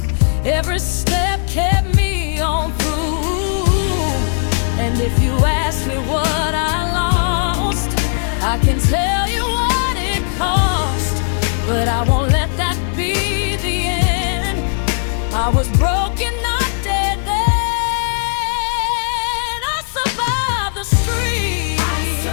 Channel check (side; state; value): right; silent; digital silence